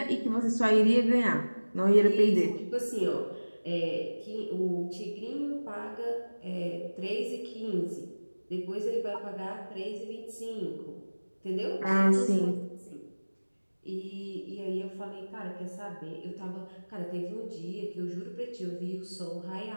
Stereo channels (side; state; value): both; inverted; correlation -1.00